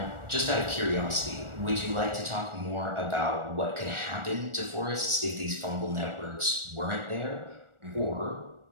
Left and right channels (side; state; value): left; late; 1.4 ms